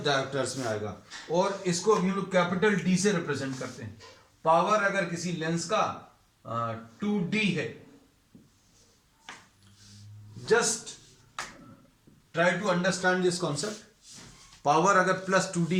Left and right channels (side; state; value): both; identical; correlation 1.00